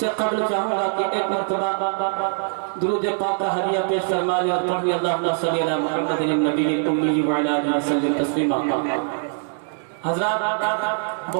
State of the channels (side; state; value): left; silent; digital silence